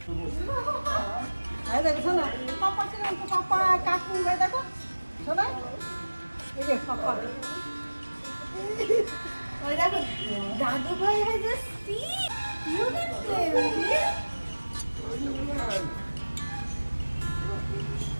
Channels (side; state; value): both; inverted; correlation -1.00